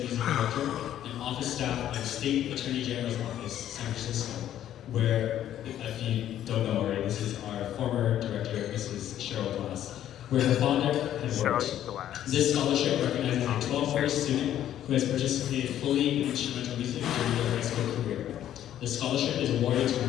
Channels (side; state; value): right; quieter; 11.4 dB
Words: Director and office staff of the State Attorney General's Office, San Francisco, where, if you don't know already, this is our former director, Mrs. Cheryl Glass, where her father had worked. This scholarship recognizes a 12th grade student who has participated fully in instrumental music during their high school career. The scholarship is awarded to